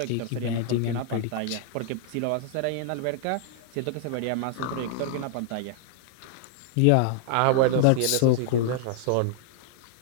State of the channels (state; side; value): different; both; correlation 0.00